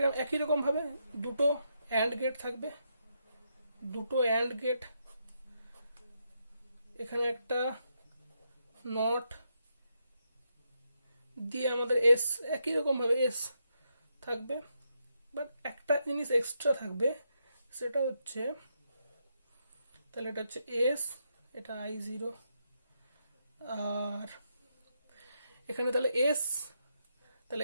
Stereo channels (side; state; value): both; inverted; correlation -0.80